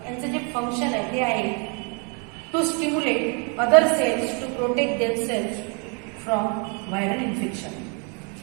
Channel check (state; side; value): quieter; left; 36.1 dB